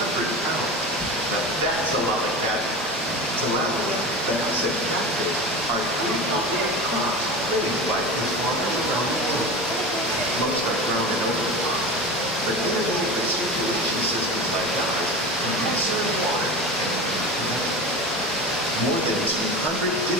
pounds. Now that's a lot of catch. Tilapia, bass, and catfish are three popular crops raised by fish farmers around the world. Most are grown in open water, but innovative recirculation systems like ours can conserve water and connect. More than 200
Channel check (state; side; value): normal; both; correlation 0.29